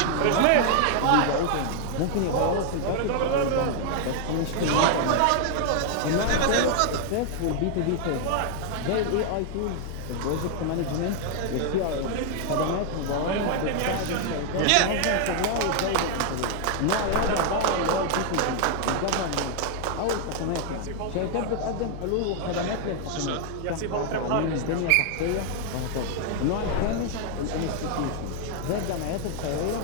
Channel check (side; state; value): both; different; correlation 0.00